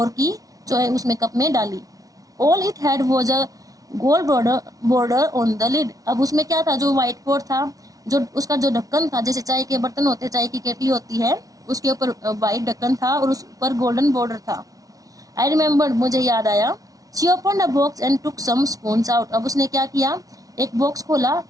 की, जो है उसमें कप में डाली। All it had was a gold border on the lid, अब उसमें क्या था, जो व्हाइट पॉट था, जो उसका जो ढक्कन था, जैसे चाय के बर्तन होते, चाय की केटली होती है, उसके ऊपर व्हाइट ढक्कन था और उस पर गोल्डन बॉर्डर था। आई रिमेम्बर्ड, मुझे याद आया। She opened a box and took some spoons out, अब उसने क्या किया, एक बॉक्स खोला,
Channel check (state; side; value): late; left; 0.18 ms